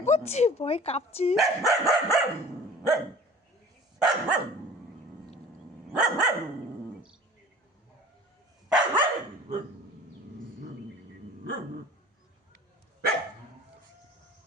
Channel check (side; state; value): both; normal; correlation 0.45